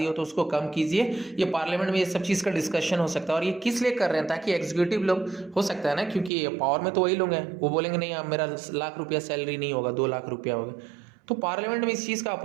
हो तो उसको कम कीजिए। ये पार्लियामेंट में ये सब चीज़ का डिस्कशन हो सकता है। और ये किस लिए कर रहे हैं, ताकि एग्जीक्यूटिव लोग, हो सकता है ना, क्योंकि पावर में तो वही लोग हैं, वो बोलेंगे नहीं अब मेरा ₹1,00,000 सैलरी नहीं होगा, ₹2,00,000 होगा, तो पार्लियामेंट में इस चीज़ का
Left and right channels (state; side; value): drops out; left; at 6.3 s